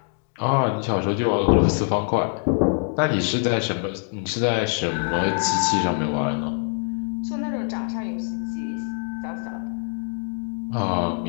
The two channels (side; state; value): right; silent; 57 dB below the other